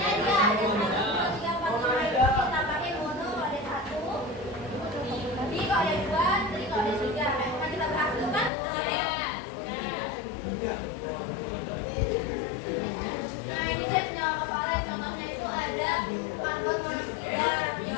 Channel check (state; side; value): drops out; right; at 8.5 s